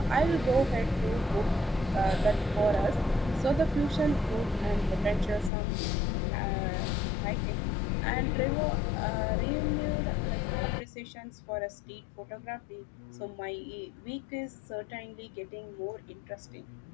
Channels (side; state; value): right; drops out; at 5.5 s